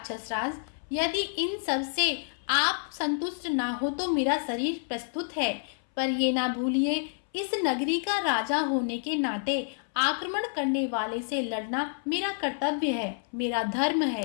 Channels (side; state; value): right; silent; 59 dB below the other